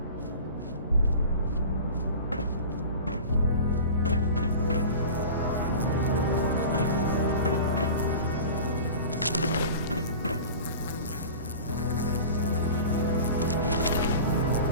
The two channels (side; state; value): both; inverted; correlation -0.37